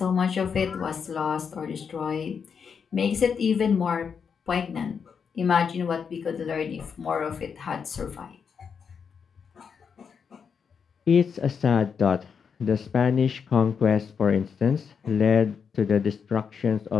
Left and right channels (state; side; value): quieter; right; 6.5 dB